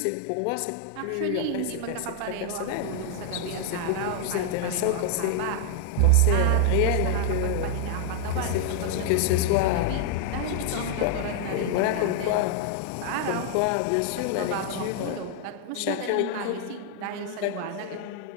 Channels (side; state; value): both; different; correlation 0.00